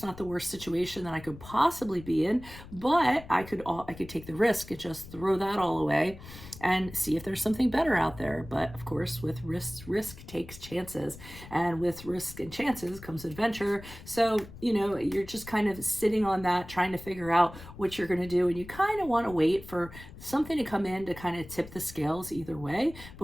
not the worst situation that I could possibly be in, but I could take the risk and just throw that all away and see if there's something better out there. But of course, with risk takes chances, and with risk and chances comes adventure. So, you're just kind of sitting on that, trying to figure out what you're going to do. And you kind of want to wait for something to come in to kind of tip the scales either way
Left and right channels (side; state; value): left; noise; rumble, 16 dB below the sound